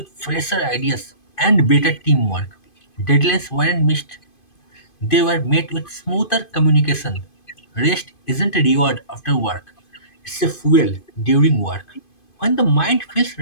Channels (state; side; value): late; right; 2.5 ms